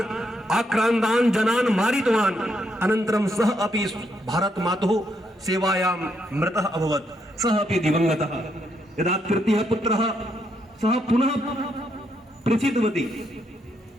आक्रान्तान् जनान् मारितवान्। अनन्तरं सः अपि भारत मातुः सेवायां मृतः अभवत्, सः अपि दिवंगतः। यदा तृतीयः पुत्रः सः पुनः प्रसिद्धवती,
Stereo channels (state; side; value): normal; both; correlation 0.77